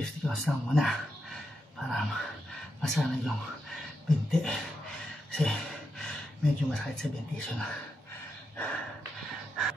counts lang muna para masanay yung binti kasi medyo masakit sa binti siya na.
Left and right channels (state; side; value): normal; both; correlation 0.85